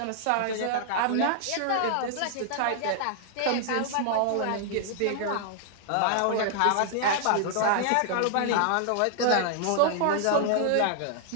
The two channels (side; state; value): both; different; correlation -0.01